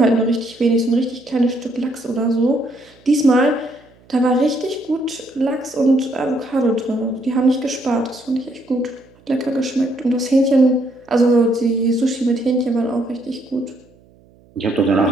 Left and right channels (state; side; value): noise; right; hum, 29 dB below the sound